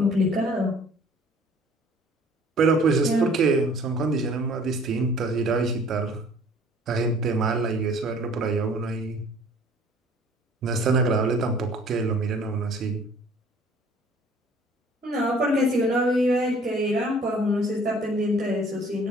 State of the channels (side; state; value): both; normal; correlation 0.53